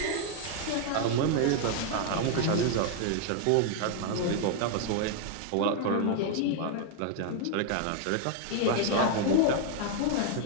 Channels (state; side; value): different; both; correlation 0.00